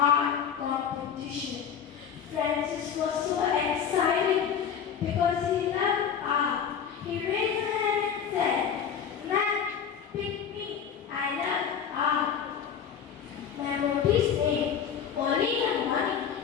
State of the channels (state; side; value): quieter; right; 7.8 dB